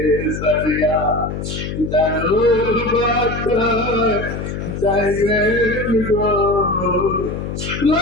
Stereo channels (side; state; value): left; noise; hum, 5 dB below the sound